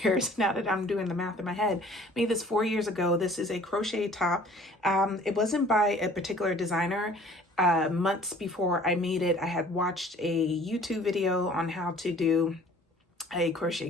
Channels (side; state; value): both; normal; correlation 0.52